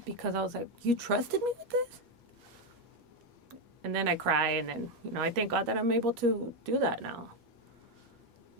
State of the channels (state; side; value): late; left; 8.4 ms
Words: because I was like, you trusted me with this? And then I cry, and then, I thank God that I'm able to do that now.